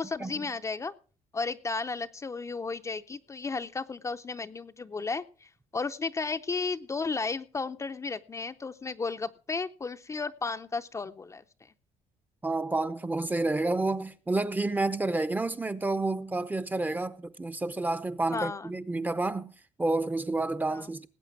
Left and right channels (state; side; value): normal; both; correlation 0.76